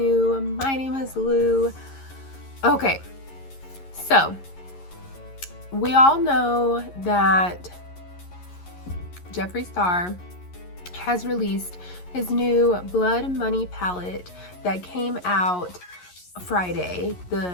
my name is Lou. Okay, so we all know that Jeffree Star has released his new Blood Money palette that came out Friday,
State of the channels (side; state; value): right; late; 11 ms